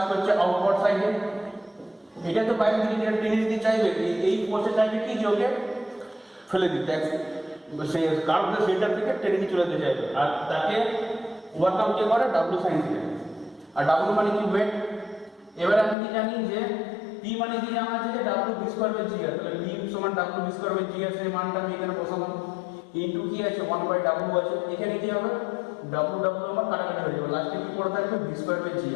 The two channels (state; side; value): drops out; right; at 16.0 s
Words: করছে আউটওয়ার্ড সাইডে। এটা তো বাইরে থেকে যেটা টেনে দিতে চাইবে, এই ফোর্সে চাইবে কি, যে ওকে ফেলে দিতে, সেই কার্ভের সেন্টার থেকে টেনে নিয়ে চলে যেতে চাইবে, আর তাকে ওভারকাম কে করে, ডাব্লিউ সাইন থিটা। আর ডাব্লিউ মানে কি, ওয়েট। এবার আমি কি জানি যে পি মানে কি জানা আছে, যে ডাব্লিউ ভি স্কয়ার বাই জি আর, তাহলে পি সমান ডাব্লিউ ভি স্কয়ার বাই জি আর, সেই মানটা আমি এখানে বসালাম। ইনটু কি আছে, 1 বাই ডাব্লিউ আছে। এখানে কি হবে, ডাব্লিউ আমার কাটাকাটি হয়ে যাবে, লাস্টে কি পড়ে থাকবে, ভি স্কয়ার বাই জি